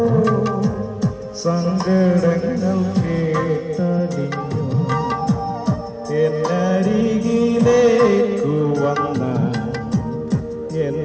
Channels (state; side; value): identical; both; correlation 1.00